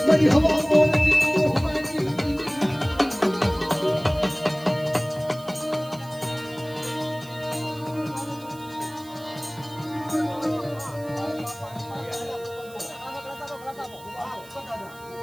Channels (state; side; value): noise; right; hiss, 22 dB below the sound